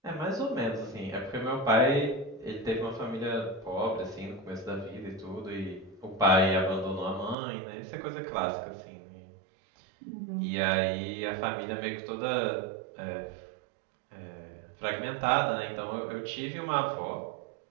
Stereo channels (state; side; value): drops out; left; at 7.4 s